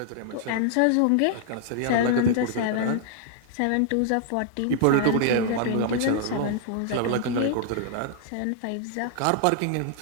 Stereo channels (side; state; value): both; different; correlation -0.01